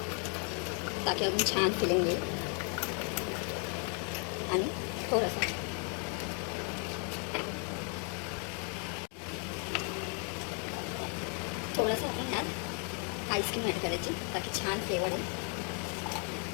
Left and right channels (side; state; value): right; quieter; 39.8 dB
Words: ताकी अजून छान फिलिंग येईल. आणि थोडंसं आपण ह्यात आईस्क्रीम ॲड करायची ताकी छान फ्लेवर येईल.